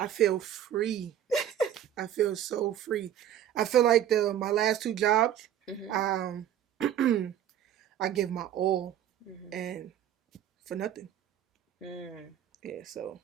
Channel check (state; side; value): quieter; left; 10.4 dB